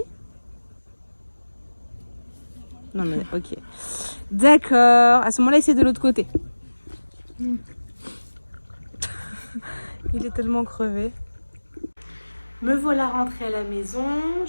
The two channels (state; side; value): inverted; both; correlation -1.00